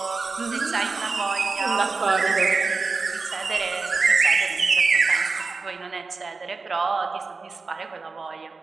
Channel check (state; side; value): quieter; left; 4.2 dB